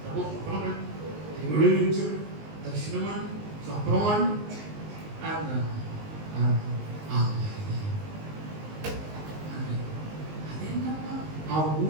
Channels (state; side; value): late; left; 19 ms